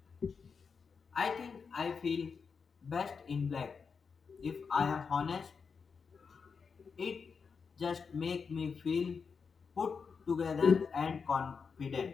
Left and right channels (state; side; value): quieter; right; 5.6 dB